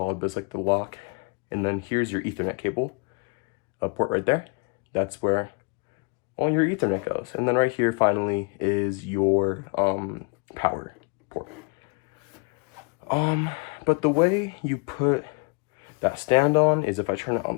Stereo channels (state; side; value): quieter; right; 33.9 dB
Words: but it's like the lock. And then here's your Ethernet cable, a port right there. That's where all your Ethernet goes. And then right here, finally, is your power port. But the way you put that stand on is if I turn it on